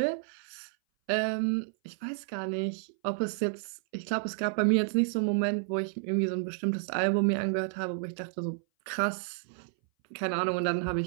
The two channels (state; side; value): silent; left; 57 dB below the other